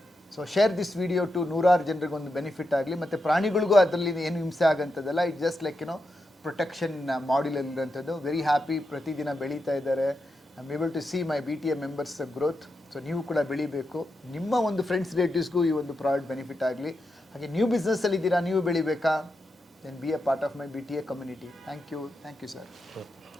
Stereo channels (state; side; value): normal; both; correlation 0.87